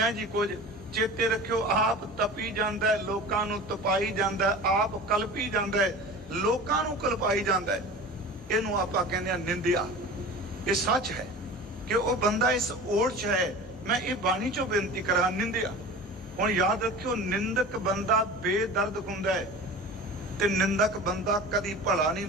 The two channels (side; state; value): both; normal; correlation 0.36